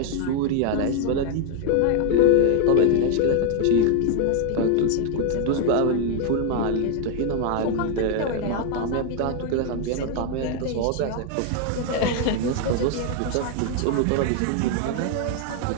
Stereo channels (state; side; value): different; both; correlation 0.00